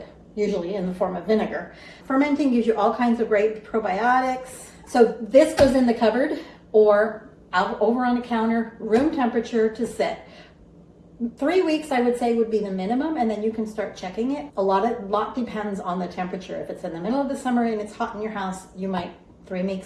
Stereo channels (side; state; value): both; identical; correlation 1.00